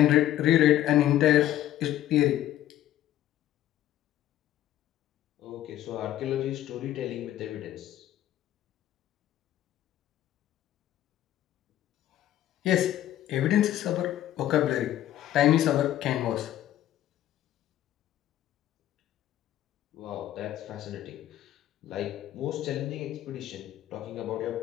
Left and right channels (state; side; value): quieter; right; 12.8 dB